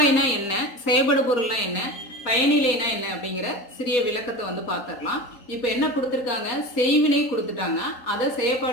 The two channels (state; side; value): late; right; 3.8 ms